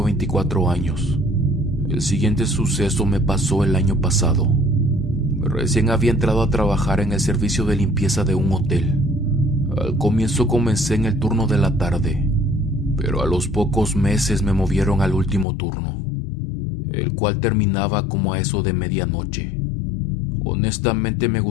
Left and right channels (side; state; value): right; drops out; at 15.5 s